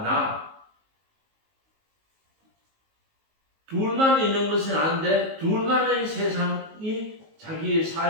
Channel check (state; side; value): late; left; 19 ms